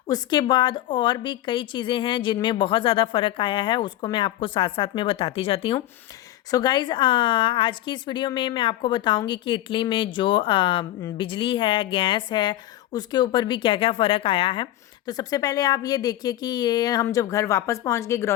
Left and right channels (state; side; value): quieter; right; 14.1 dB